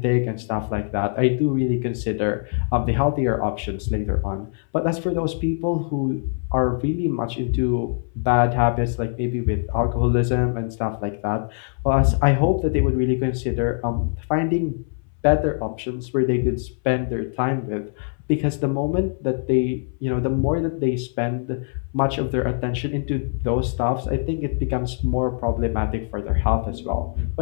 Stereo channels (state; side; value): silent; right; 60 dB below the other